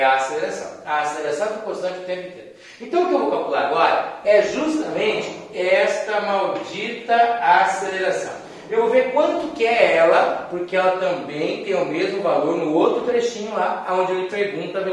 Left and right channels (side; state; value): both; identical; correlation 1.00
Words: a aceleração. A aceleração é constante o tempo inteiro. Então, o que eu vou calcular agora é justamente esta maldita aceleração. Eu vou ver quanto que é ela, porque ela também tem o mesmo valor no outro trechinho lá, onde ele pergunta a